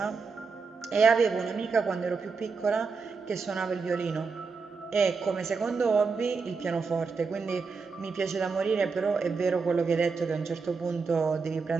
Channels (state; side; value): quieter; left; 4.8 dB